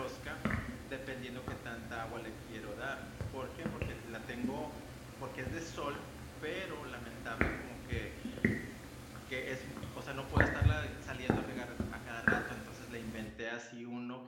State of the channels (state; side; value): identical; both; correlation 1.00